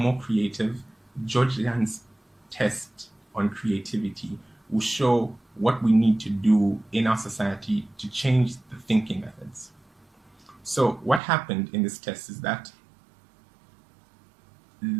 creative, George Land's test on creativity will show what we need to do in our society to change the thinking methods. So what happened in this test is that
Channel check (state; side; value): drops out; left; at 11.2 s